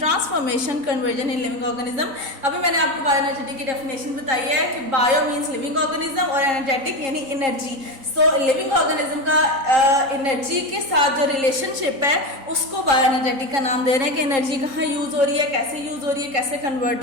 conversion in living organism. अभी मैंने आपको बायोएनर्जेटिक की डेफिनेशन बताई है कि बायो मीन्स लिविंग ऑर्गेनिज्म और एनर्जेटिक यानी एनर्जी। सो लिविंग ऑर्गेनिज्म का एनर्जी के साथ जो रिलेशनशिप है उसको बायोएनर्जेटिक का नाम दे रहे हैं कि एनर्जी कहाँ यूज हो रही है, कैसे यूज हो रही है, कैसे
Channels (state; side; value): late; left; 3.9 ms